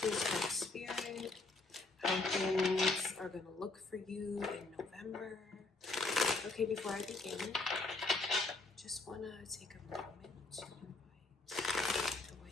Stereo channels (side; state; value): right; quieter; 3.3 dB